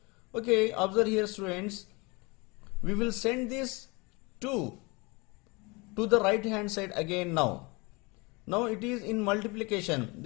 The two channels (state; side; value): quieter; right; 26.9 dB